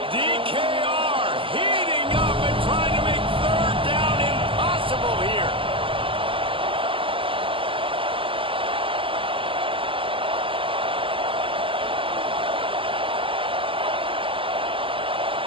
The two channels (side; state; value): left; late; 0.25 ms